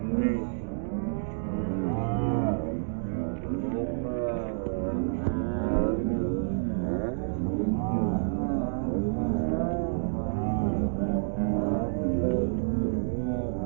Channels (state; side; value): silent; left; digital silence